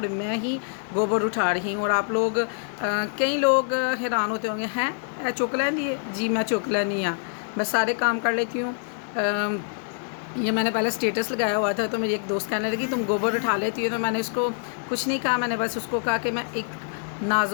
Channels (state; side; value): silent; right; 61 dB below the other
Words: میں ہی گوبر اٹھا رہی ہوں. اور آپ لوگ کئی لوگ حیران ہوتے ہوں گے، ہیں چک لیندی ہے. جی میں چک لینی ہاں، میں سارے کام کر لیتی ہوں. یہ میں نے پہلے سٹیٹس لگایا ہوا تھا تو میری ایک دوست کہنے لگی تم گوبر اٹھا لیتی ہو. تو میں نے اس کو کچھ نہیں کہا، میں نے بس اس کو کہا کہ میں ایک